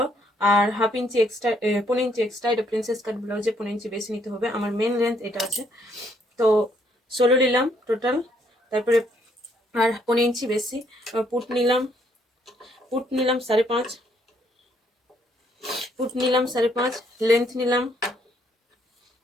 আর half inch extra, 15 inch extra. এটা প্রিন্সেস কাট ব্লাউজে 15 ইঞ্চি বেশি নিতে হবে। আমার মেন লেন্থ এটা আছে, তো 16 নিলাম টোটাল। তারপরে আর 15 ইঞ্চি বেশি পুট নিলাম। পুট নিলাম 5.5, পুট নিলাম 5.5। লেন্থ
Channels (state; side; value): normal; both; correlation 0.69